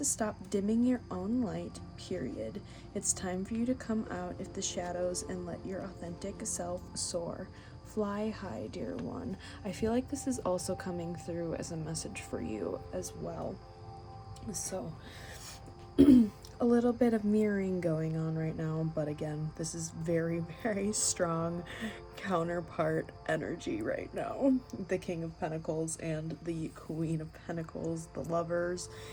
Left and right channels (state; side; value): identical; both; correlation 1.00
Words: stop dimming your own light, period. It's time for you to come out of the shadows and let your authentic self soar. Fly high, dear one. I feel like this is also coming through as a message for you as well. So, a little bit of mirroring going on right now, but again, this is very, very strong counterpart energy right now. The King of Pentacles and the Queen of Pentacles, the Lovers,